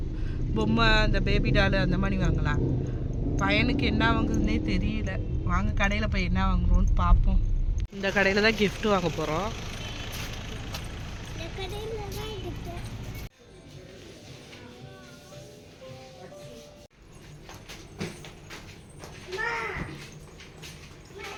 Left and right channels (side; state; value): both; identical; correlation 1.00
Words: பொம்மை அந்த பேபி டாலு அந்த மாதிரி வாங்கலாம். பையனுக்கு என்ன வாங்குறதுனே தெரியல. வாங்க கடையில் போய் என்ன வாங்குறோன்னு பார்ப்போம். இந்த கடையில் தான் கிஃப்ட்டு வாங்க போகிறோம்.